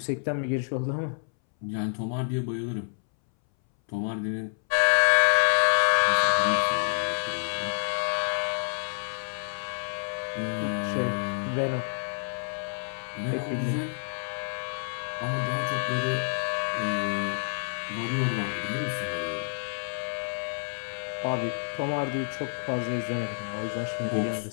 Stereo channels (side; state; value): right; silent; 59 dB below the other